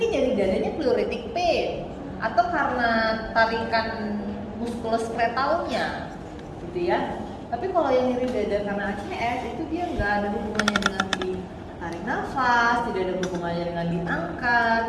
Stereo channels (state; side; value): identical; both; correlation 1.00